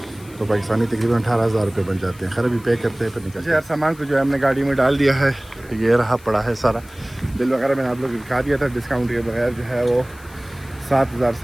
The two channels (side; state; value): left; noise; hiss, 24 dB below the sound